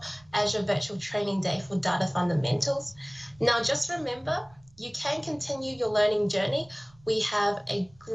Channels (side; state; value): right; noise; rumble, 28 dB below the sound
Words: Azure Virtual Training Day for Data Fundamentals. Now, just remember, you can continue your learning journey. We have a